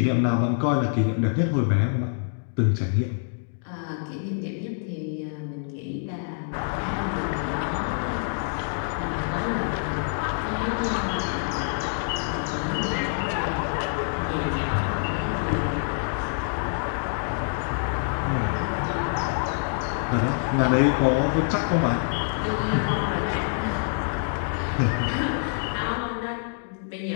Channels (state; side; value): silent; right; digital silence